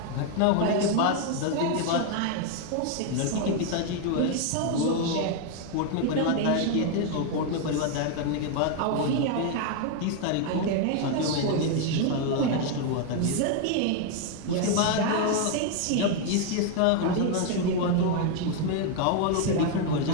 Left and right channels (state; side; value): different; both; correlation 0.01